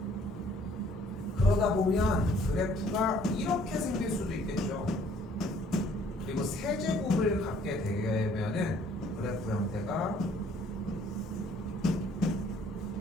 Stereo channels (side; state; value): both; normal; correlation 0.60